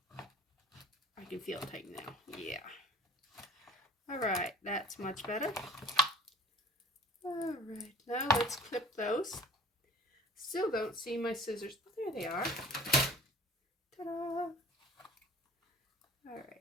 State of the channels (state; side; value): normal; both; correlation 0.49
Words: I can feel it tighten now. Yeah. All right, that's much better. All right, now let's clip those. Still don't see my scissors. Oh, there they are. Ta-da! All